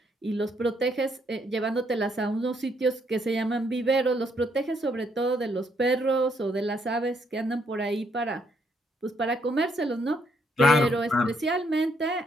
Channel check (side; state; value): both; normal; correlation 0.72